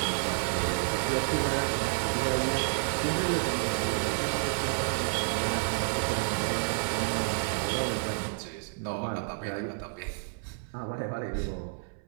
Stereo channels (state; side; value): silent; left; 58 dB below the other